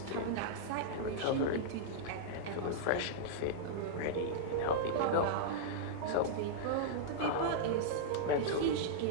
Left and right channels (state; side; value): different; both; correlation -0.02